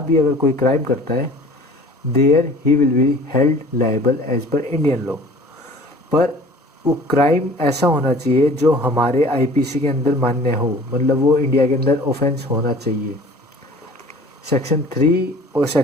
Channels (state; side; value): normal; both; correlation 0.47